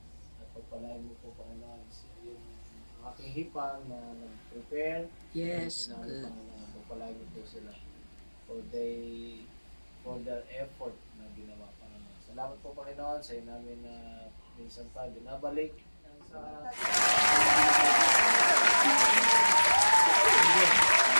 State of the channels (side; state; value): both; inverted; correlation -1.00